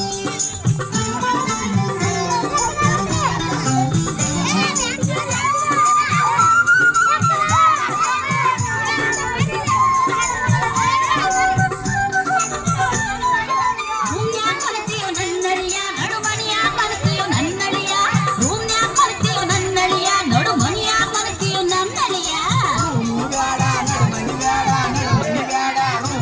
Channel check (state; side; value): identical; both; correlation 1.00